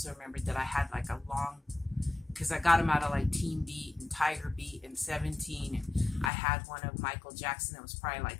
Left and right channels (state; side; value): drops out; right; at 6.3 s